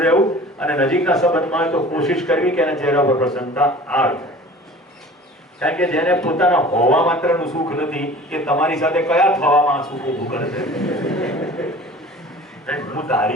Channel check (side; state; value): both; normal; correlation 0.43